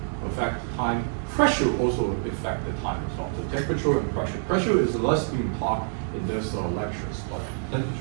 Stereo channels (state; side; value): silent; left; 57 dB below the other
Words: affect time pressure also affect the time as well. So temperature and pressure. Pressure is less being taught in this lectures, but